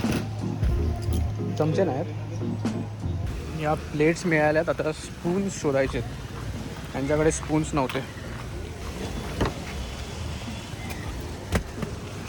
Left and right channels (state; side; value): identical; both; correlation 1.00